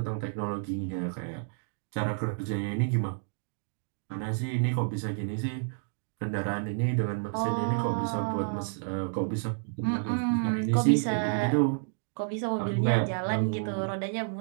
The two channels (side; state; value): left; silent; digital silence